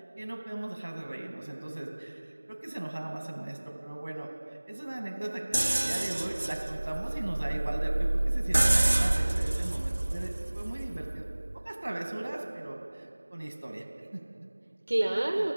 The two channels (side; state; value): both; inverted; correlation -1.00